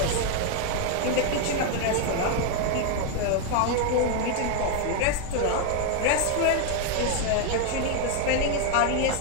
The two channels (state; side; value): different; both; correlation 0.00